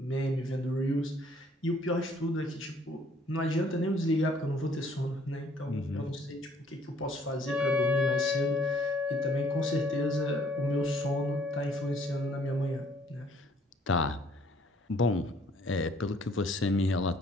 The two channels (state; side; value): normal; both; correlation 0.61